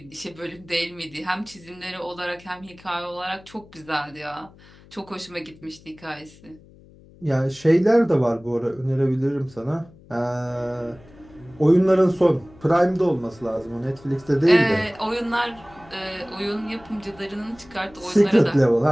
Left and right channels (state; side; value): noise; left; hum, 24 dB below the sound